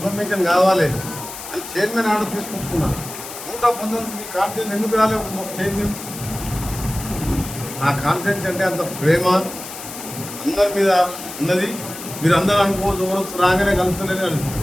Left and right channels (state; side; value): noise; left; hiss, 11 dB below the sound